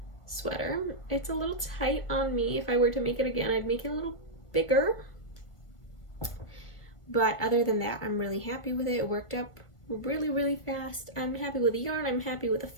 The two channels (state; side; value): late; right; 1.5 ms